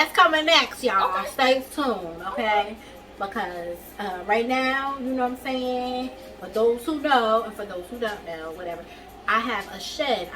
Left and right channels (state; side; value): identical; both; correlation 1.00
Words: coming next, y'all. Okay. Stay tuned, okay? Because right now, you know what I'm saying? For those who know, and for those who don't know, whatever, I have a shed